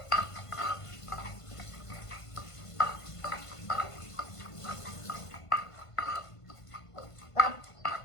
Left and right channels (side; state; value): right; late; 1.5 ms